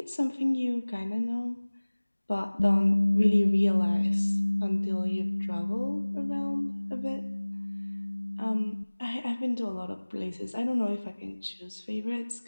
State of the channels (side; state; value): both; inverted; correlation -1.00